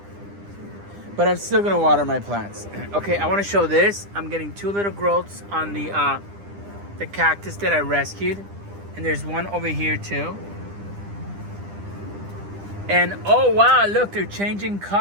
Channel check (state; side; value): late; left; 10 ms